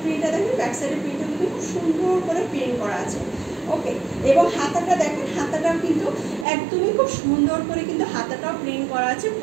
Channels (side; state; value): left; drops out; at 6.5 s